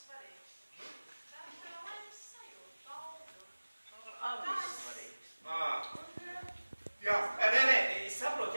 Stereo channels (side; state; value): both; inverted; correlation -1.00